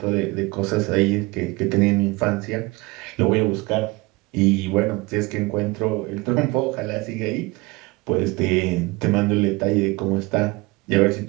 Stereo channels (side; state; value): left; quieter; 23.7 dB